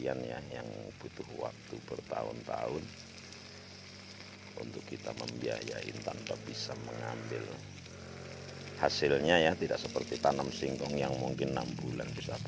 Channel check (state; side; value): identical; both; correlation 1.00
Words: ya, yang butuh waktu bertahun-tahun untuk kita membiayain tanpa bisa mengambil hasilnya ya. Tidak seperti tanam singkong yang mungkin 6 bulan bisa